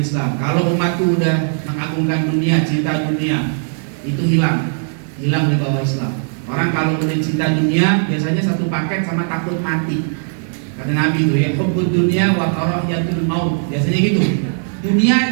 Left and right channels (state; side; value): silent; left; digital silence